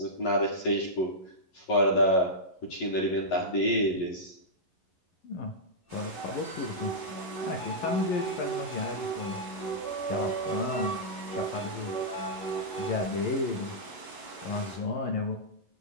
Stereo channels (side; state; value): right; late; 11 ms